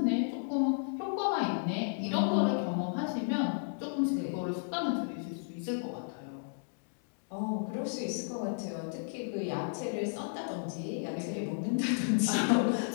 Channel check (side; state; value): right; silent; digital silence